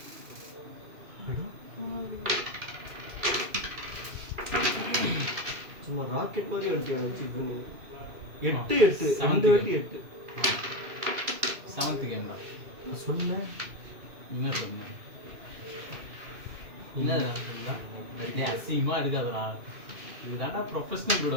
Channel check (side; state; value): left; late; 2.5 ms